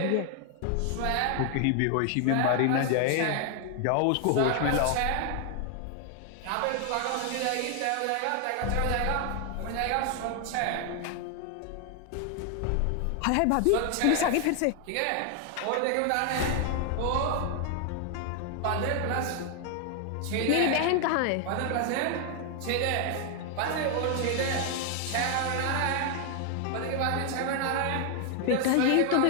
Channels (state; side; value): different; both; correlation 0.00